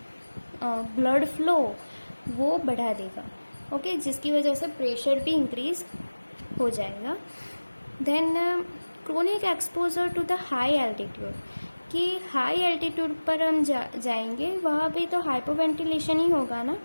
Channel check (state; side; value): inverted; both; correlation -1.00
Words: ब्लड फ्लो वो बढ़ा देगा, ओके, जिसकी वजह से प्रेशर भी इंक्रीज हो जाएगा। Then chronic exposure to the high altitude, कि हाई एल्टीट्यूड पर हम जाएंगे, वहाँ भी तो हाइपोवेंटिलेशन ही होगा ना,